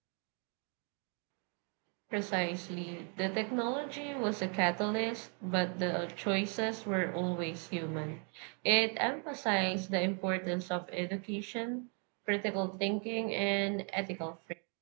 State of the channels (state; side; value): quieter; left; 39.3 dB